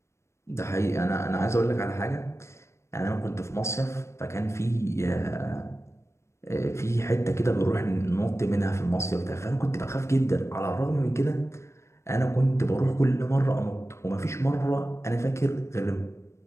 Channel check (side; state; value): right; late; 0.13 ms